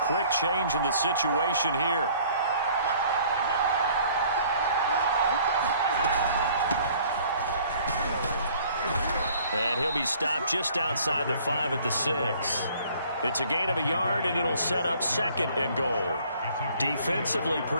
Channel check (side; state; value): both; inverted; correlation -0.56